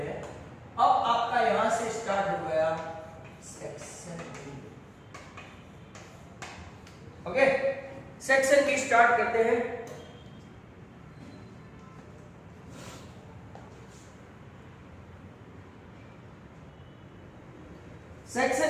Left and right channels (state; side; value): identical; both; correlation 1.00